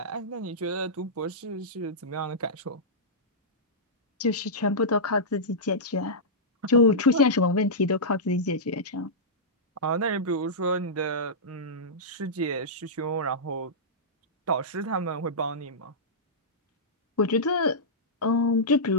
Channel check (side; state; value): both; normal; correlation -0.13